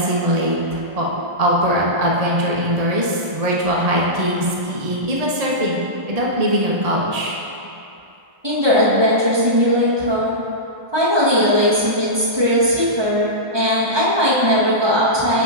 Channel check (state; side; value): late; left; 1.2 ms